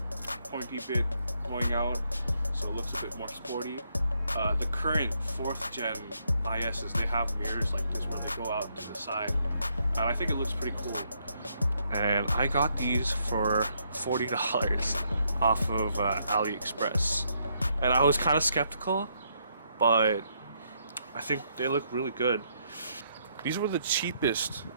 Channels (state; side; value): inverted; both; correlation -0.74